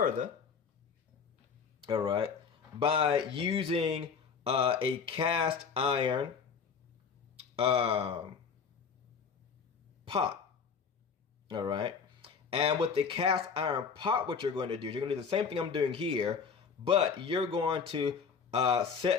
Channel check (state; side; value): quieter; right; 6.0 dB